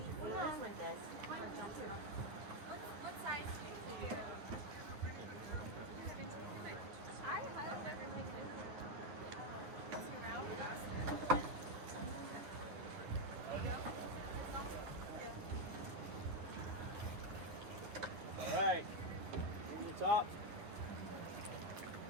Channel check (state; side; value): late; left; 10 ms